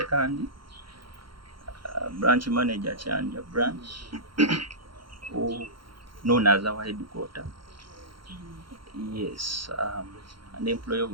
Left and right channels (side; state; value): left; late; 0.73 ms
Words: branch manager Chanja branch, known as our headquarter. Yes, an employee of